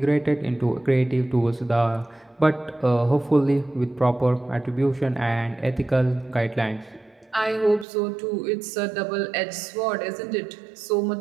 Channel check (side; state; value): left; drops out; at 7.9 s